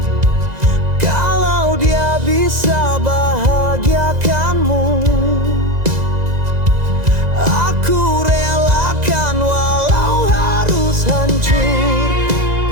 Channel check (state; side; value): late; left; 2.0 ms